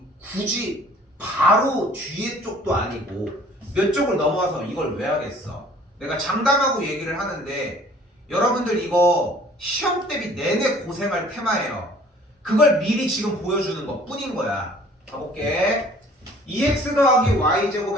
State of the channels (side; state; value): both; normal; correlation 0.53